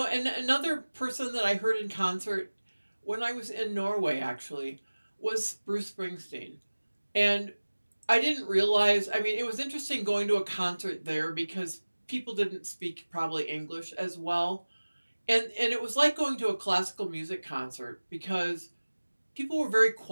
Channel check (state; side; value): inverted; both; correlation -1.00